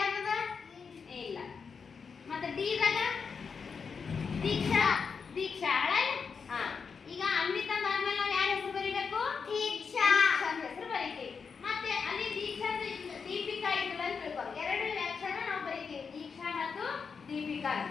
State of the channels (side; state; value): right; quieter; 5.7 dB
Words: ಇಲ್ಲ. ಮತ್ತೆ ಡಿ ದಾಗ ದೀಕ್ಷಾ ಹಳೆ. ಈಗ ಅನ್ವಿತಾ ಆದ್ಮೇಲೆ ನಾವು ಯಾರ ಹೆಸರು ಬರೀಬೇಕು, ದೀಕ್ಷಾ ಅಂತ ಹೆಸರು ಬರೀತೀವಿ. ಮತ್ತೆ ಅಲ್ಲಿ ದೀಕ್ಷಾ ದೀಪಿಕಾ ಇರ್ತದೆ ಅಂತ ತಿಳ್ಕೊ. ಎರಡು ಅಕ್ಷರ ನಾವು ಬರೀತೀವಿ, ದೀಕ್ಷಾ ಮತ್ತು ದೀಪಿಕಾ.